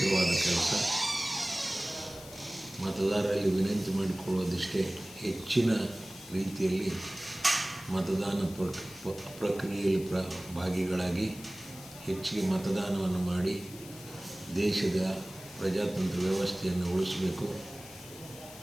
ಕೆಲಸ. ಮತದಾರರಲ್ಲಿ ವಿನಂತಿ ಮಾಡಿಕೊಳ್ಳೋದಿಷ್ಟೇ, ಹೆಚ್ಚಿನ ರೀತಿಯಲ್ಲಿ ಮತದಾನ ಪ್ರಕ್ರಿಯೆಯಲ್ಲಿ ಭಾಗಿಗಳಾಗಿ ಹೆಚ್ಚಿಗೆ ಮತದಾನವನ್ನು ಮಾಡಿ ದೇಶದ ಪ್ರಜಾತಂತ್ರ ವ್ಯವಸ್ಥೆಯನ್ನು ಉಳಿಸಬೇಕು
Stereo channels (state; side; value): noise; left; hiss, 16 dB below the sound